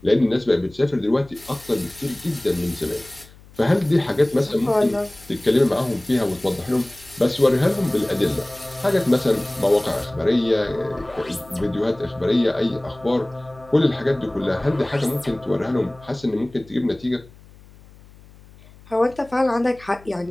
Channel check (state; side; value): noise; left; hum, 23 dB below the sound